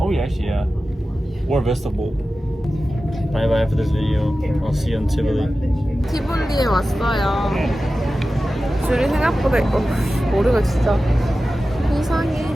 yeah, actually yeah. Or vegetable. Bye bye for this video. I'll see you in Tivoli. 티볼리에 왔어요. 줄이 생각보다 머리가 진짜 이상해.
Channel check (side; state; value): both; normal; correlation 0.94